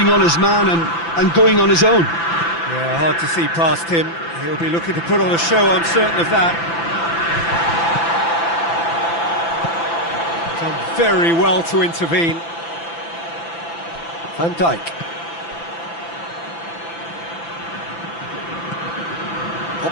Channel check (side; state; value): right; late; 5.9 ms